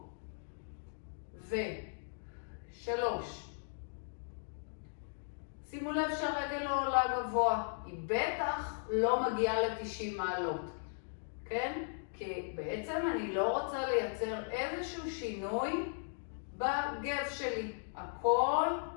3. שימו לב שהרגל לא עולה גבוה, היא בטח לא מגיעה ל-90 מעלות, כן? כי בעצם אני לא רוצה לייצר איזשהו שינוי בגב שלי. הכל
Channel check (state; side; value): silent; right; digital silence